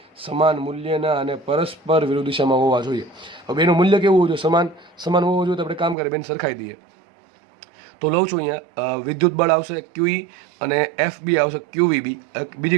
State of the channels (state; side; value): drops out; left; at 6.0 s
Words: સમાન મૂલ્યના અને પરસ્પર વિરુદ્ધ દિશામાં હોવા જોઈએ. હવે એનું મૂલ્ય કેવું હોવું જોઈએ? સમાન હોવું જોઈએ. તો આપણે કામ કરીએ, બેન સરખાઈ દઈએ. તો લઉં છું અહીંયા વિદ્યુત બળ આવશે ક્યુઈ અને એફ બી આવશે ક્યુવીબી. બીજી